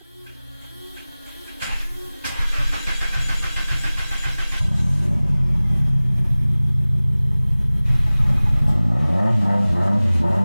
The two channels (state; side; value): inverted; both; correlation -0.99